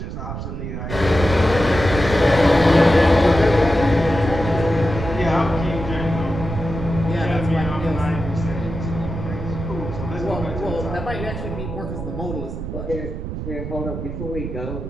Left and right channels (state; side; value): noise; right; rumble, 6 dB below the sound